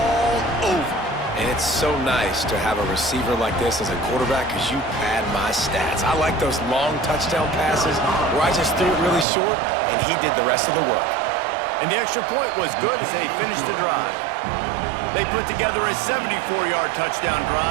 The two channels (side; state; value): left; drops out; at 9.2 s